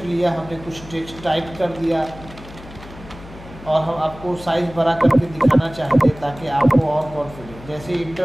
लिया, हमने कुछ टेक्स्ट टाइप कर दिया और हम आपको साइज़ बड़ा करके दिखाना चाहते हैं ताकि आपको और कॉन्फिडेंस। जैसे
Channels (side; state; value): left; noise; hum, 17 dB below the sound